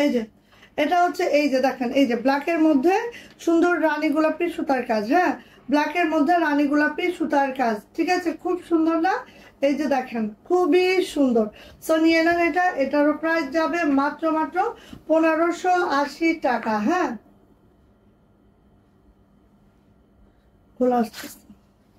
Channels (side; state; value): both; identical; correlation 1.00